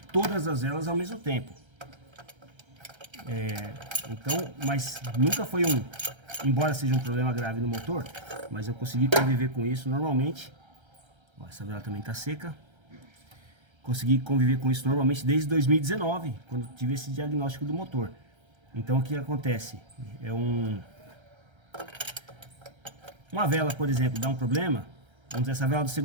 todas as velas ao mesmo tempo. Então, mas nunca foi embora seja um problema grave no motor, mas eu consegui conviver com isso normalmente. Ó, essa vela também está seca. Consegui conviver com isso normalmente desde 2019, quando tive esse diagnóstico do motor. Então o que acontece? Uma vela, por exemplo, dá um problema. Vamos dizer, essa vela do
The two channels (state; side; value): late; left; 1.3 ms